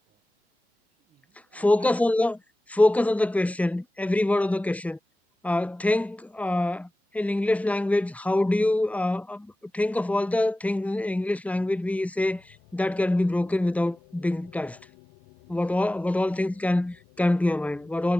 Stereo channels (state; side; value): normal; both; correlation 0.97